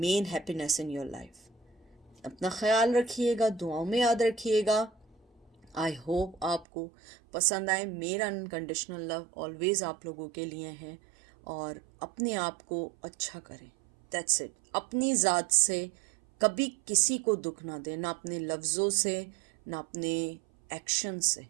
happiness in your life. अपना ख्याल रखिएगा, दुआओं में याद रखिएगा। आई होप आपको पसंद आए। मेरा अनकंडीशनल लव ऑलवेज आप लोगों के लिए है। और अपने आप को अच्छा करें, दैट्स इट। अपनी ज़ात से कभी किसी को दुख ना दें, ना अपने लफ्ज़ों से ना अपने एक्शन से,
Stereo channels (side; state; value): left; drops out; at 6.7 s